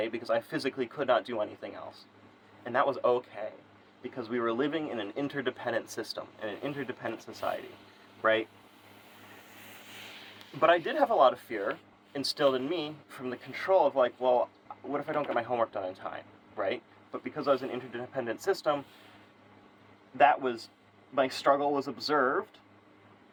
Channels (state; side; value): identical; both; correlation 1.00